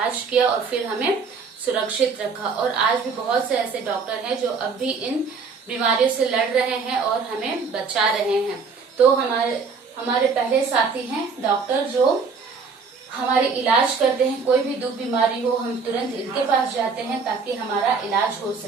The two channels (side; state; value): left; quieter; 5.1 dB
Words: किया और फिर हमें सुरक्षित रखा। और आज भी बहुत से ऐसे डॉक्टर हैं जो अब भी इन बीमारियों से लड़ रहे हैं और हमें बचा रहे हैं। तो हमारे पहले साथी हैं डॉक्टर, जो हमारे इलाज करते हैं। कोई भी दुख बीमारी हो, हम तुरंत इनके पास जाते हैं ताकि हमारा इलाज हो